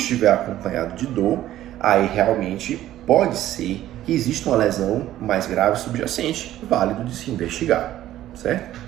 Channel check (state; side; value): quieter; left; 13.4 dB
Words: acompanhado de dor, aí realmente pode ser que exista uma lesão mais grave subjacente, válido de se investigar, certo?